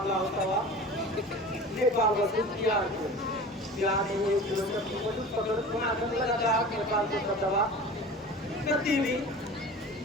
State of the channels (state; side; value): normal; both; correlation 0.37